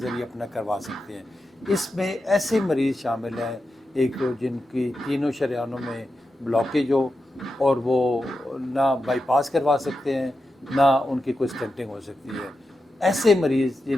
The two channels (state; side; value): normal; both; correlation 0.89